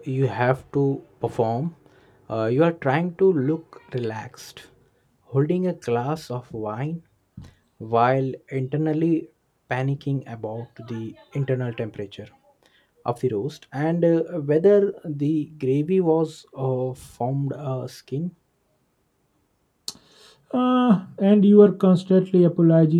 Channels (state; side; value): identical; both; correlation 1.00